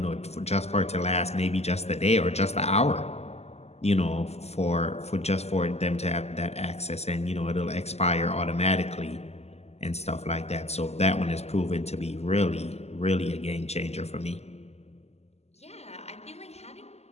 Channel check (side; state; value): right; late; 0.31 ms